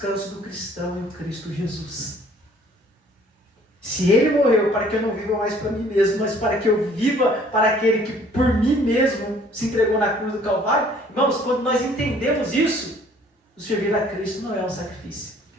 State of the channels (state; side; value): normal; both; correlation 0.57